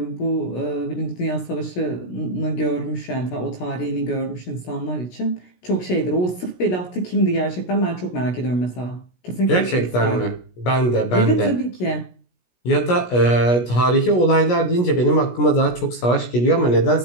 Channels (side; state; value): right; late; 17 ms